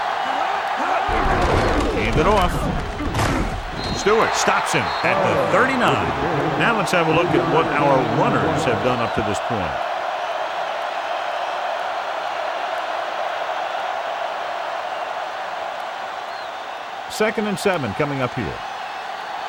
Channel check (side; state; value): both; identical; correlation 1.00